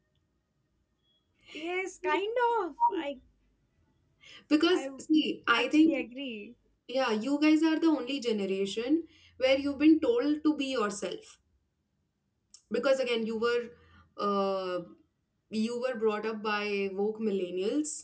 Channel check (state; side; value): identical; both; correlation 1.00